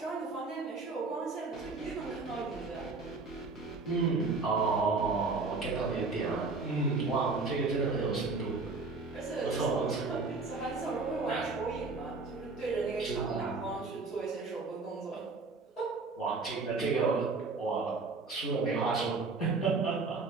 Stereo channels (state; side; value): quieter; left; 4.0 dB